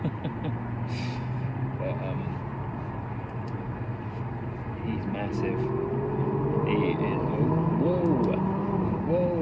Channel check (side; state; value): both; identical; correlation 1.00